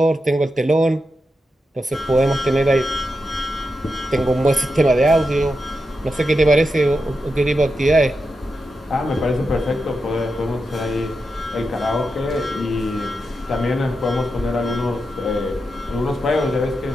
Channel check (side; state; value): both; normal; correlation 0.88